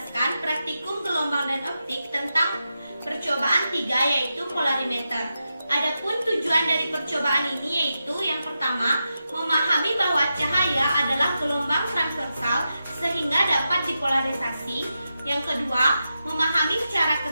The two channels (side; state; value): both; inverted; correlation -0.88